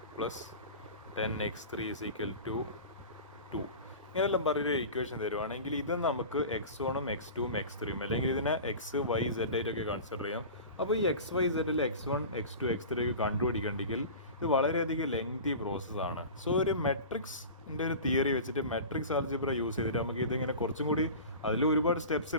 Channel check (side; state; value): both; inverted; correlation -0.35